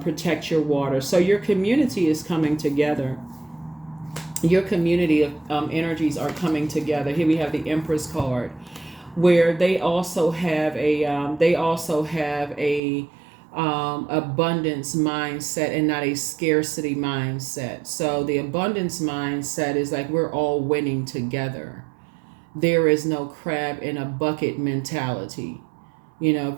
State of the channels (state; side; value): drops out; left; at 12.8 s